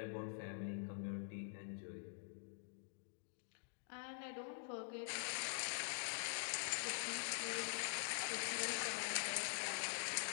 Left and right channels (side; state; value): right; silent; digital silence